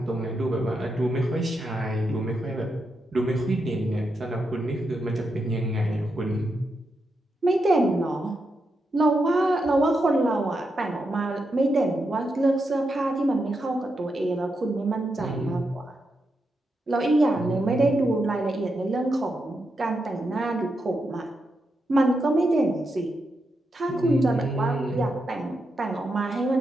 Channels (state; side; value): normal; both; correlation 0.85